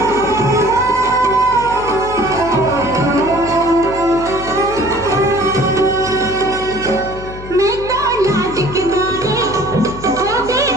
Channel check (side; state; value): left; noise; hum, 13 dB below the sound